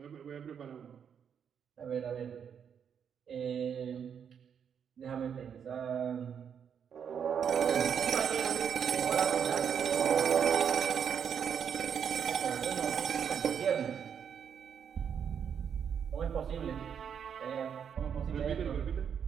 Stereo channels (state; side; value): quieter; left; 7.7 dB